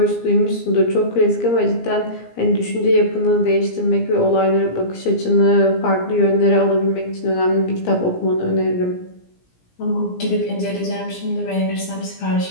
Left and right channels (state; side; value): late; right; 17 ms